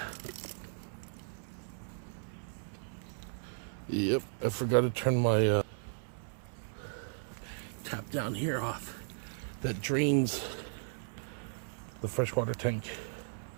Yep, I forgot to turn my tap down here off. That drains the freshwater tank.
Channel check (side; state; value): left; silent; 54 dB below the other